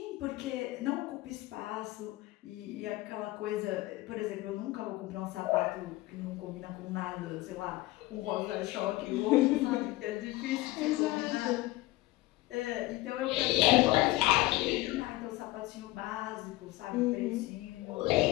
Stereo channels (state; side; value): quieter; right; 18.7 dB